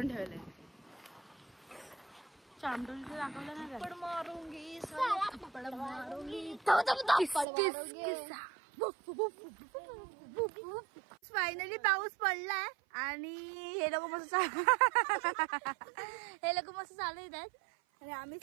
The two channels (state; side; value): drops out; left; at 7.5 s